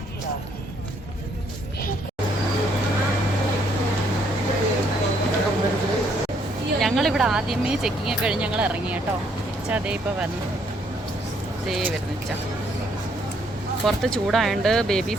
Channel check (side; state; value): both; normal; correlation 0.69